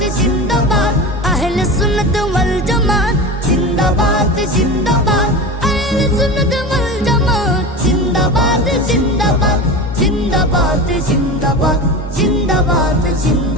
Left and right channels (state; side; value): normal; both; correlation 0.27